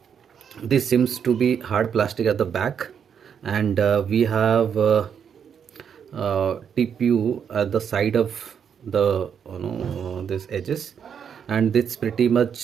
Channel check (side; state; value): left; quieter; 7.7 dB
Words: this seems to be hard plastic at the back, and we have TPU at the side of the this edges, and this pretty much